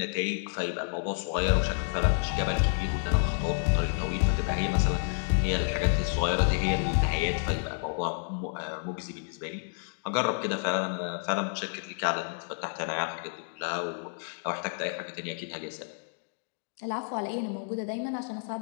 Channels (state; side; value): silent; right; digital silence